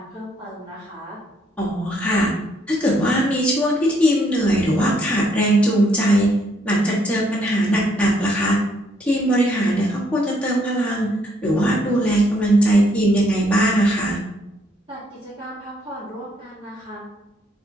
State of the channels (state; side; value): normal; both; correlation 0.69